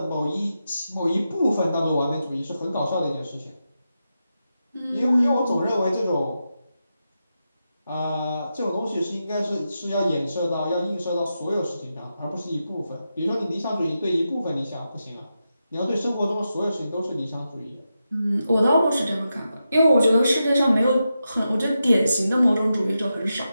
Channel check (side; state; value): both; inverted; correlation -0.88